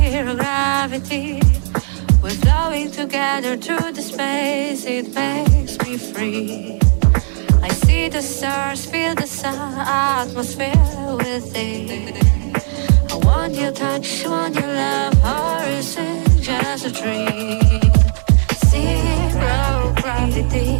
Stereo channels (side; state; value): left; silent; 68 dB below the other